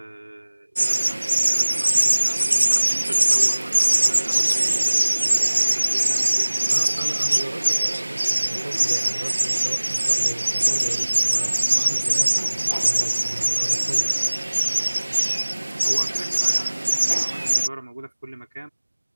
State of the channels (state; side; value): inverted; both; correlation -1.00